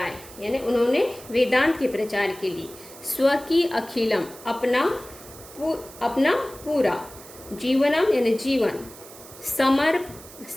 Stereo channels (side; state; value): right; noise; hiss, 18 dB below the sound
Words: यानी उन्होंने वेदांत के प्रचार के लिए स्वकीय अखिलम अपना पूरा, जीवनम यानी जीवन,